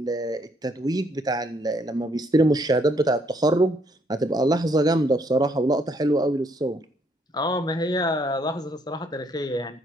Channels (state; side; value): normal; both; correlation 0.69